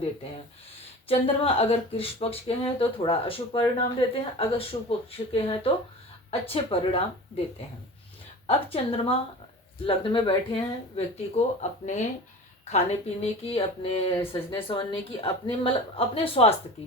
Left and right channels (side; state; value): both; normal; correlation 0.36